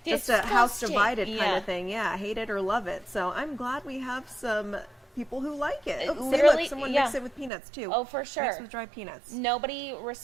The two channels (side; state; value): left; drops out; at 7.5 s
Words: just a house Disgusting. divided kind Yeah. of thing. Yeah, hate it or love it. So I'm glad we have some people who like it. Oh, see, Literally, look, someone yeah. mixed it with peanuts too. Oh, for sure. Mixed with dried peanuts. Nobody